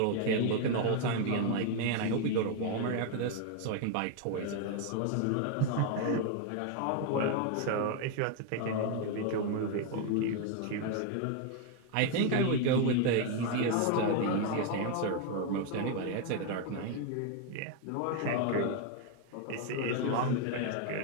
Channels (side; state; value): both; different; correlation 0.01